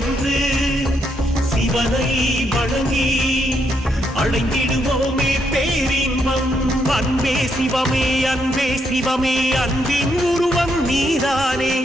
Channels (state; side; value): normal; both; correlation 0.77